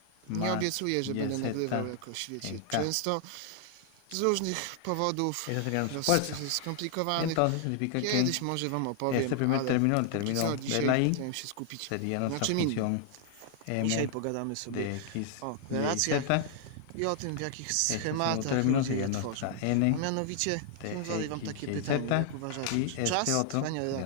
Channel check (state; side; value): different; both; correlation 0.00